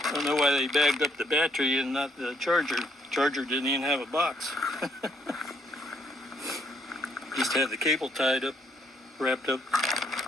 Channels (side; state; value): both; normal; correlation 0.70